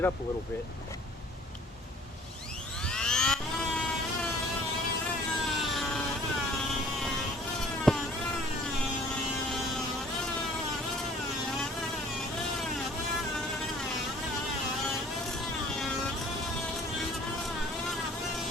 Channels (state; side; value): normal; both; correlation 0.53